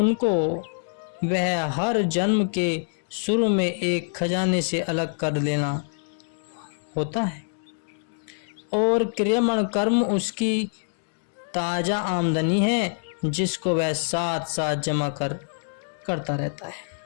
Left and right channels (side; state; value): right; silent; digital silence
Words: वह हर जन्म के शुरू में एक खजाने से अलग कर लेना होता है और क्रियमण कर्म उसकी ताजा आमदनी है जिसको वह साथ साथ जमा करता रहता है,